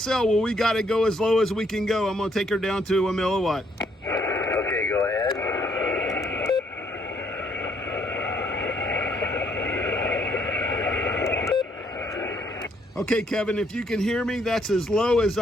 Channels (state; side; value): normal; both; correlation 0.69